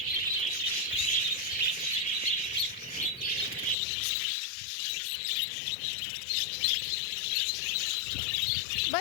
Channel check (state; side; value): drops out; right; at 3.8 s